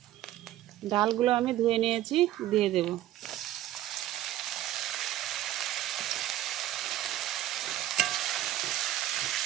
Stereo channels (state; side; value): quieter; left; 13.8 dB